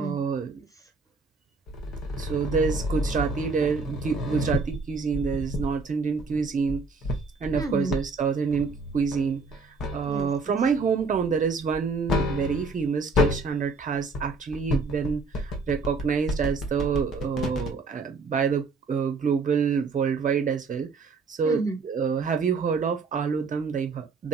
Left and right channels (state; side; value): quieter; left; 4.0 dB